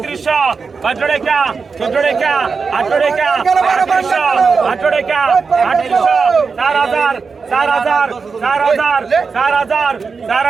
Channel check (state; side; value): quieter; left; 5.0 dB